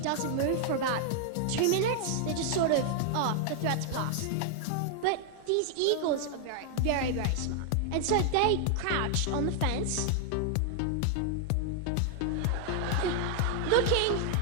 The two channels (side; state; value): both; different; correlation 0.00